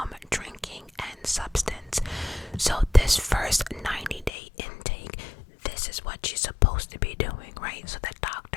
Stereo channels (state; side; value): drops out; right; at 4.3 s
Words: drinking and substance. So this first 90-day intake, this is what she's supposed to be doing, right? So the